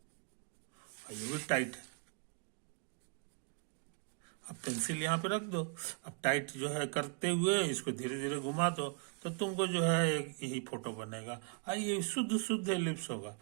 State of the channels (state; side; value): quieter; left; 36.8 dB